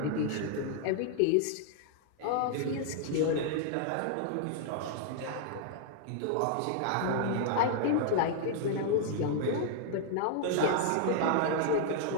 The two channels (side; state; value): both; different; correlation 0.00